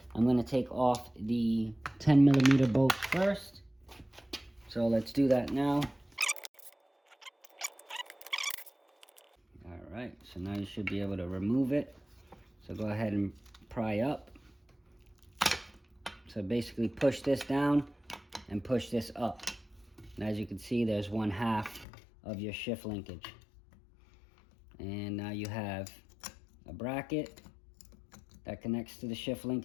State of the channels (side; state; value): right; drops out; at 21.9 s